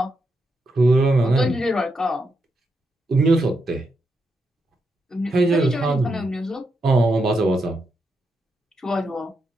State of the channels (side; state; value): both; normal; correlation 0.83